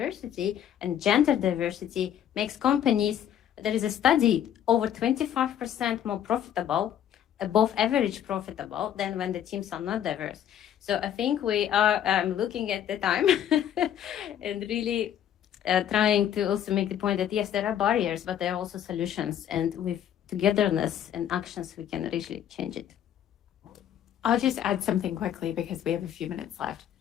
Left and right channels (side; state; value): right; quieter; 10.2 dB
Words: and gender diversity makes companies, there is a study, over 25% more profitable, above average profitable than when the teams are not diverse. So I think we are looking at the time and really trying to also make the point that yes, there are barriers, but there are also solutions, and with togetherness and actions, we can really change it. I'll just add something quickly because we have a few minutes left.